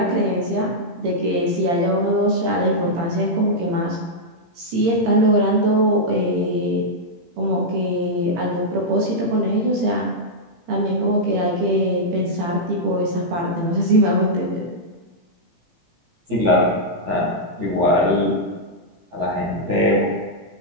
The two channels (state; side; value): late; left; 18 ms